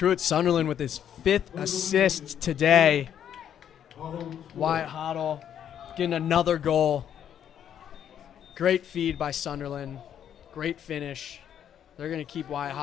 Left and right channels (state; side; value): quieter; right; 9.5 dB